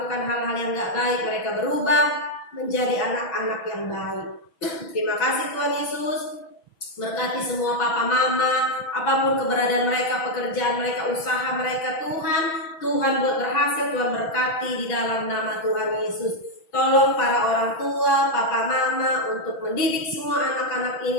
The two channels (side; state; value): right; late; 6.2 ms